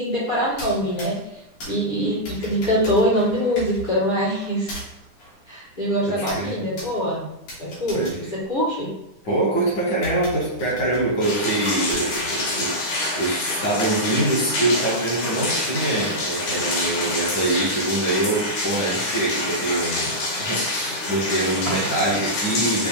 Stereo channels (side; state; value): right; late; 9.9 ms